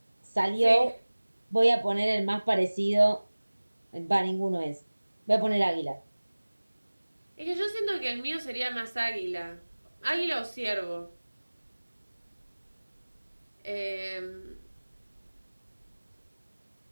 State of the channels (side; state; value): both; inverted; correlation -1.00